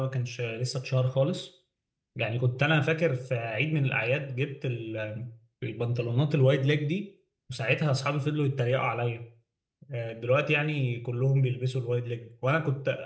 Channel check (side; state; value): both; identical; correlation 1.00